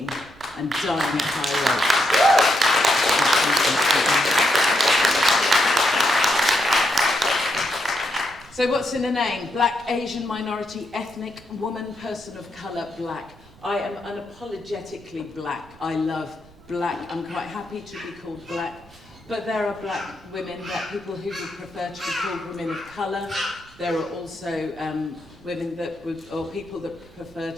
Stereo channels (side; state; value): right; noise; rumble, 24 dB below the sound